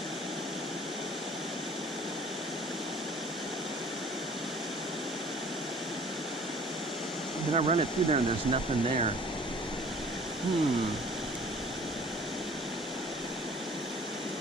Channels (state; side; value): normal; both; correlation 0.50